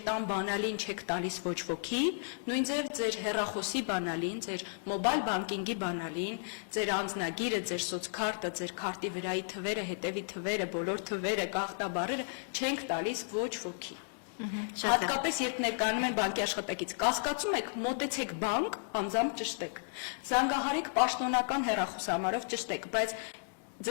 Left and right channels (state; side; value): silent; right; digital silence